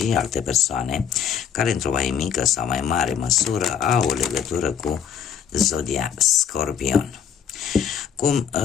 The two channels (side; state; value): right; quieter; 8.0 dB